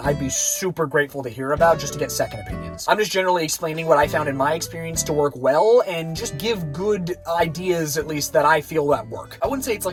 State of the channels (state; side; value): identical; both; correlation 1.00